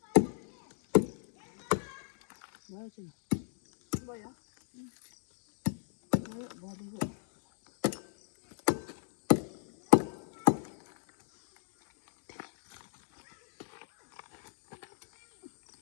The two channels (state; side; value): silent; right; digital silence